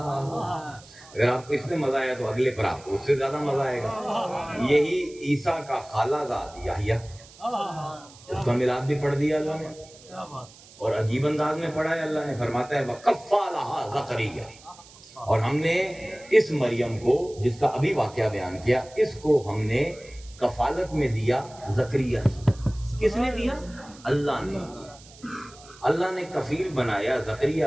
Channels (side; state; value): right; noise; hiss, 22 dB below the sound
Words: اگر آپ کو اس میں مزہ آیا تو اگلے پر آپ کو اس سے زیادہ مزہ آئے گا۔ یہی عیسیٰ کا خالہ زاد یحییٰ، اس کا میلاد بھی پڑھ دیا اللہ نے، اور عجیب انداز میں پڑھا ہے۔ اللہ نے فرماتا ہے وَكَفَّلَهَا زَكَرِيَّا، اور ہم نے اس مریم کو، جس کا ابھی واقعہ بیان کیا، اس کو ہم نے کفالت میں دیا زکریا کی۔ کس نے دیا؟ اللہ نے۔ اللہ نے کفیل بنایا زکریا